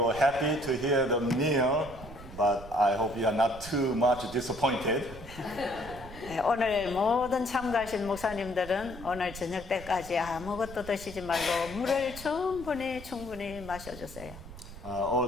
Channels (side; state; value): right; noise; rumble, 14 dB below the sound